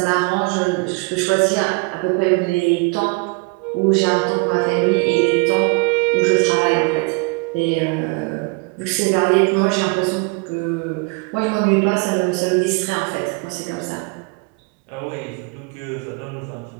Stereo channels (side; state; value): left; quieter; 29.8 dB